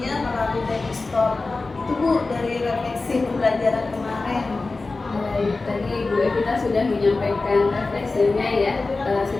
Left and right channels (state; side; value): quieter; right; 3.6 dB